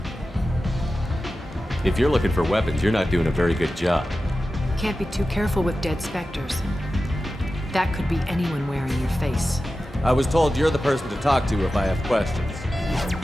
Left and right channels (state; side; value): normal; both; correlation 0.94